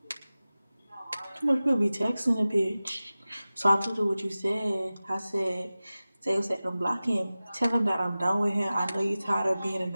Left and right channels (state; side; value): inverted; both; correlation -0.96